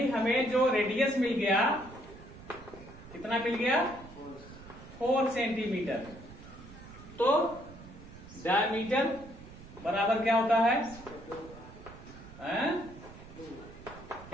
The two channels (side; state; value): right; noise; rumble, 17 dB below the sound